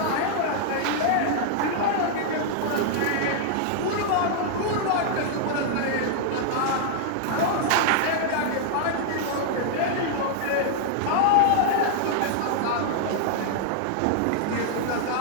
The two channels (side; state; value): both; different; correlation -0.01